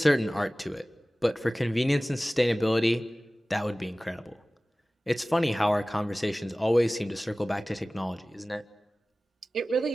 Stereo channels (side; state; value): both; normal; correlation 0.98